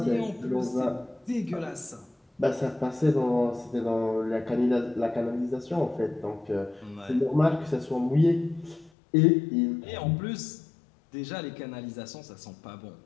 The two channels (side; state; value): right; drops out; at 8.9 s